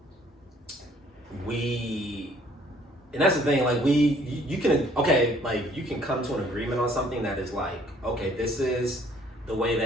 and that's the thing, like you can like you can come to an agreement on something that is like, okay, this is the way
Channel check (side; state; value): both; normal; correlation 0.60